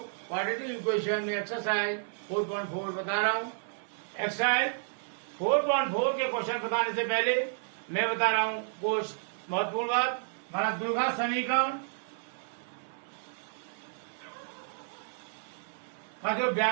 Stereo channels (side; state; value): left; silent; digital silence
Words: क्वाड्रेटिक इक्वेशन में एक्सरसाइज 4.4 बता रहा हूँ। एक्सरसाइज 4.4 के क्वेश्चन बताने से पहले मैं बता रहा हूँ कुछ महत्वपूर्ण बात। हमारा द्विघात समीकरण का जो